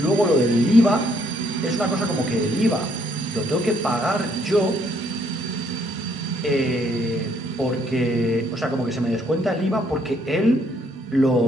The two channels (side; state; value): both; normal; correlation 0.69